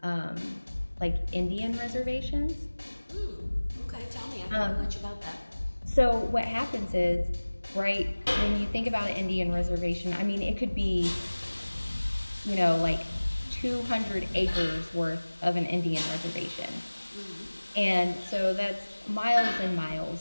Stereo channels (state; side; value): inverted; both; correlation -1.00